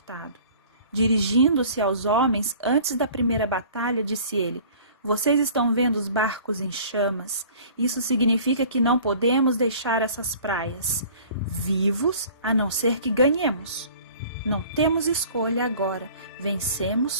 Dirigindo-se aos homens antes da primeira batalha, disse ele, vocês estão vendo os barcos em chamas? Isso significa que não podemos deixar essas praias vivos, a não ser que ganhemos. Não temos escolha agora.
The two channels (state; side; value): inverted; both; correlation -0.48